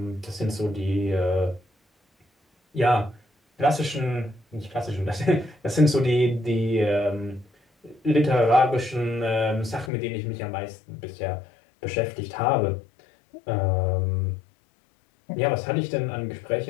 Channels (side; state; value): right; drops out; at 9.9 s